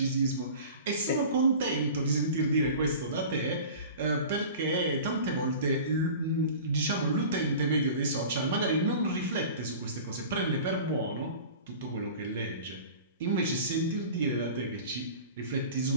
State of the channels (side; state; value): both; inverted; correlation -0.39